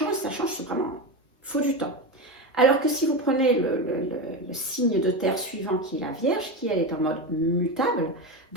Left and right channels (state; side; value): normal; both; correlation 0.18